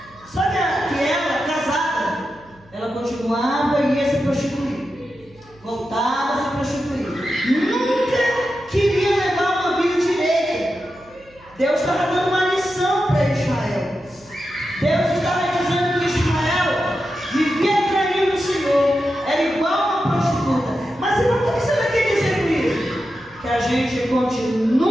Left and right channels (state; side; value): noise; right; hum, 28 dB below the sound